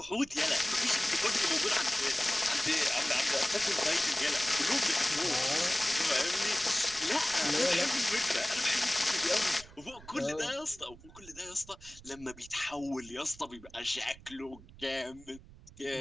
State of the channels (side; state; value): right; noise; rumble, 20 dB below the sound